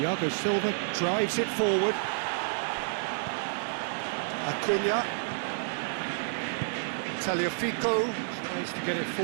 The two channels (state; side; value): silent; left; 58 dB below the other